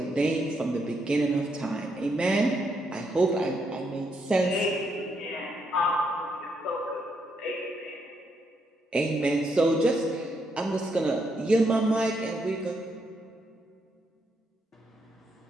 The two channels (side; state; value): both; normal; correlation 0.77